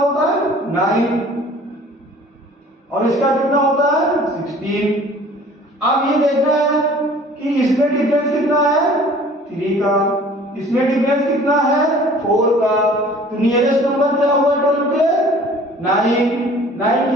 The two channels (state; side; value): normal; both; correlation 0.49